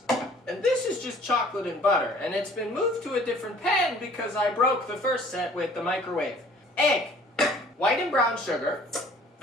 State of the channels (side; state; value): both; normal; correlation 0.53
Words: And this is just chocolate and butter, and it's been moved to a different pan because I broke the first set with the microwave. Egg, white and brown sugar,